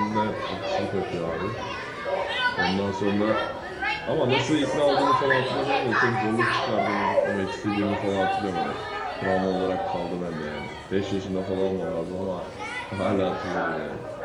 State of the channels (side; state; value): both; identical; correlation 1.00